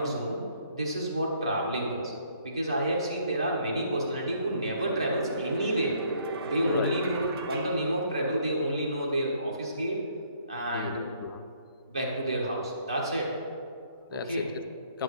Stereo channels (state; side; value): inverted; both; correlation -0.65